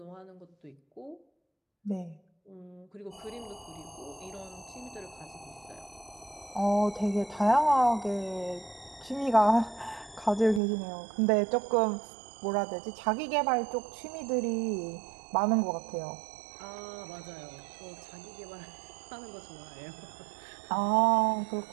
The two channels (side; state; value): left; drops out; at 10.6 s